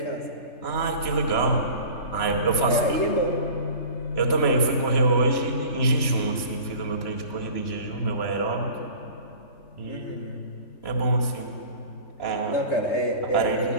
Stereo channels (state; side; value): late; right; 3.0 ms